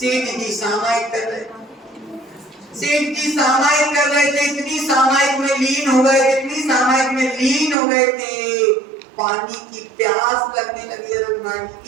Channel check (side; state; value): left; drops out; at 7.8 s